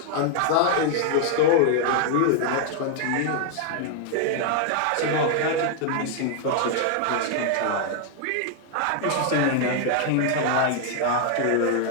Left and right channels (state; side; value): different; both; correlation 0.00